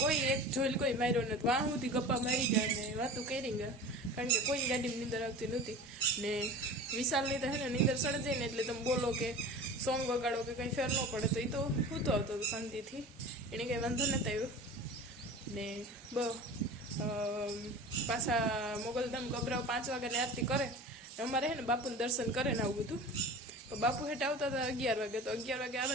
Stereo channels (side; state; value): both; normal; correlation 0.36